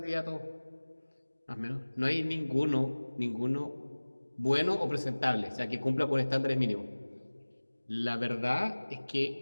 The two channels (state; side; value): inverted; both; correlation -1.00